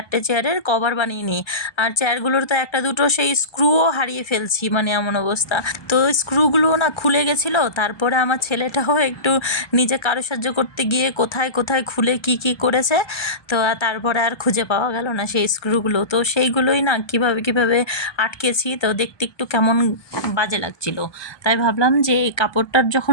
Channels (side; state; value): right; late; 1.2 ms